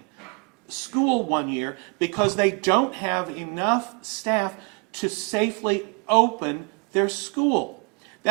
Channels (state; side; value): quieter; left; 36.0 dB